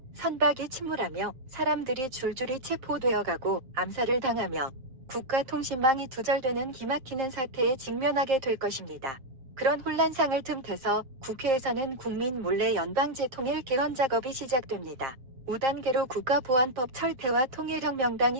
선박이 침몰하며 사람들이 줄줄이 체포되어가고 암살을 당하며 국가통신망이 두절되는 기막히는 사태에 직면하게 될 것입니다. 그런 혼란상을 틈타서 국회에서는 국민 몰래 연방제통일 개헌 작업이 시작됩니다. 5단계로 국가보안법 철폐와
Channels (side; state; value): left; late; 7.7 ms